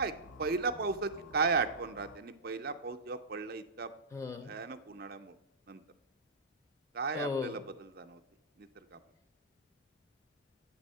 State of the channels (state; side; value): quieter; left; 3.1 dB